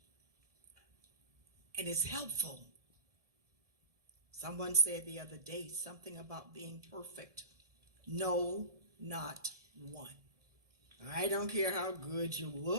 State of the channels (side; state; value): left; late; 1.7 ms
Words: and is helpful. Someone said the other day something about being perfect. No, not one. I don't care how good you